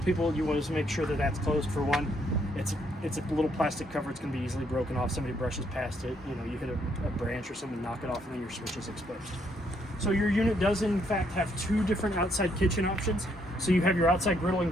you want to make sure that that's closed. For one, it's a little plastic cover. It's going to be easily broken off. Somebody brushes past it, you know, you hit a branch or something, knock it off, and then your switch is exposed. So your unit does in fact have two different outside kitchen options. So you have your outside griddle and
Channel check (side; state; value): both; normal; correlation 0.72